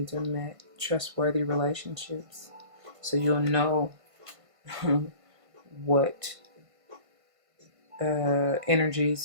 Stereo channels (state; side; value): late; left; 1.5 ms